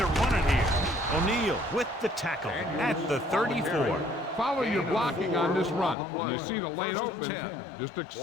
run it here. O'Neal with the tackle at the 34. Follow your blocking on this run. When you see the lane open, just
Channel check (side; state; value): right; drops out; at 6.0 s